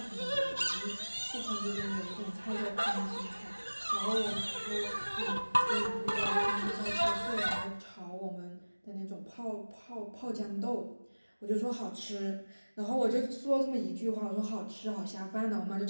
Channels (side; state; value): both; inverted; correlation -1.00